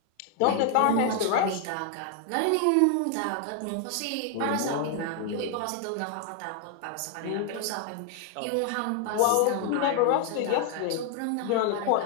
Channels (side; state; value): both; different; correlation 0.00